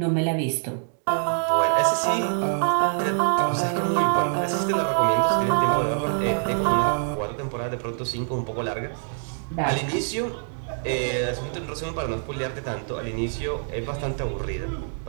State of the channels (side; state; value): left; silent; digital silence